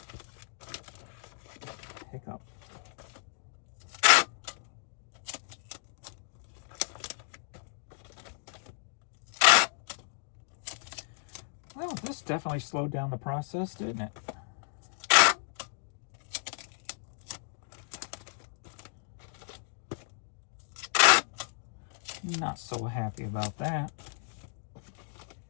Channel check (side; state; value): right; silent; digital silence